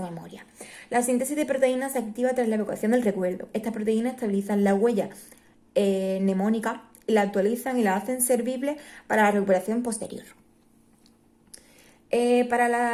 memoria. La síntesis de proteínas se activa tras la evocación del recuerdo. Estas proteínas estabilizan la huella mnemónica, la actualizan y la hacen servible para la recuperación posterior. Para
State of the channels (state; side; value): identical; both; correlation 1.00